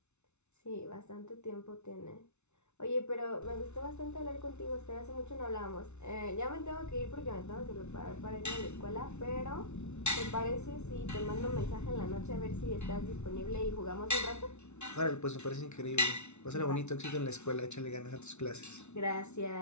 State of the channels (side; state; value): right; late; 0.82 ms